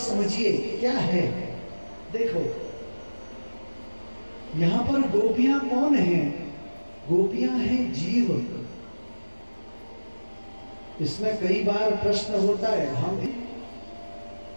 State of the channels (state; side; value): inverted; both; correlation -1.00